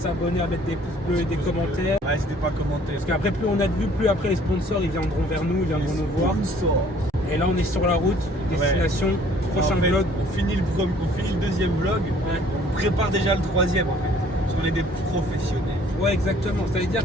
à mettre des pouces bleus et des commentaires. Ouais, n'hésitez pas à commenter. Parce qu'après plus on a de vues, plus après les sponsors ils viendront vers nous, ils viendront nous voir. Et là on est sur la route, destination, prochain vlog. On finit le deuxième vlog, on prépare déjà le troisième en fait. Parce qu'on est des professionnels. Ouais exactement, ça veut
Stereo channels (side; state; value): both; normal; correlation 0.57